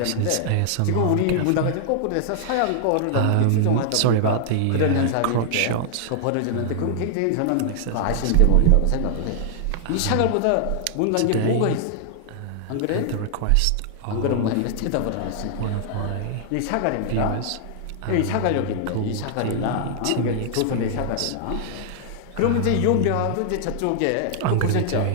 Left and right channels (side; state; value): both; different; correlation -0.01